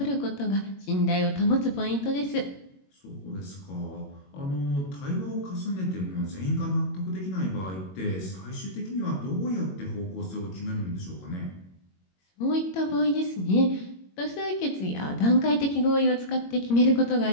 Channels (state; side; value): late; right; 21 ms